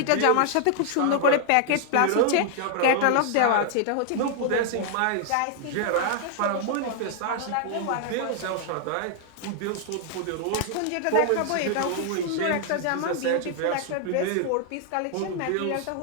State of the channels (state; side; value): different; both; correlation 0.00